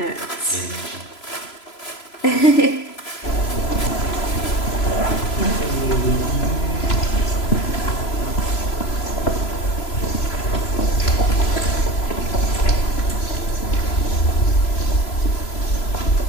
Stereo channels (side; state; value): right; late; 3.0 ms